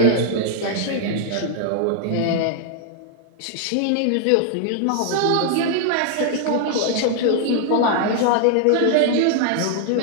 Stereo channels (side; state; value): both; different; correlation 0.00